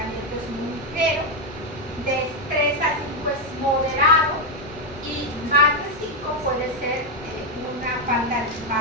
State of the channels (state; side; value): normal; both; correlation 0.04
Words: es muy ligero, de 3 a 5 es moderado y más de 5 puede ser una falta de